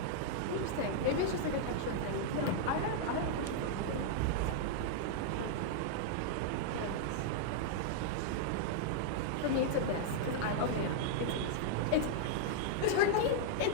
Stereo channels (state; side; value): different; both; correlation -0.01